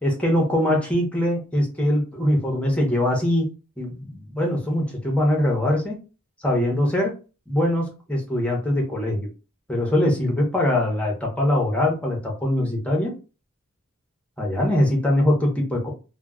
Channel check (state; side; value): normal; both; correlation 0.73